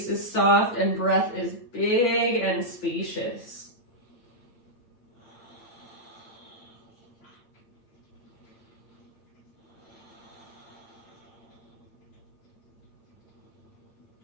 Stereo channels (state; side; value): late; right; 8.7 ms